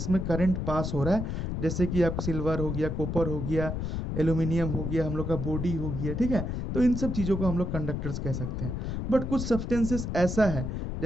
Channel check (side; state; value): left; noise; rumble, 3 dB below the sound